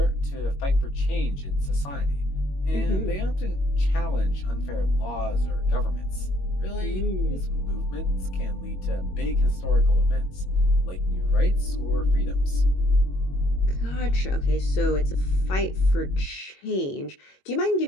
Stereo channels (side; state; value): right; late; 21 ms